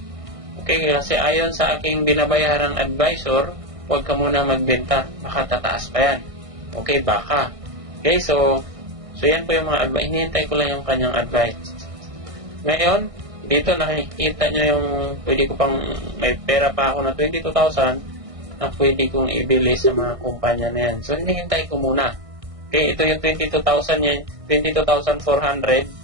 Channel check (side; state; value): left; late; 1.6 ms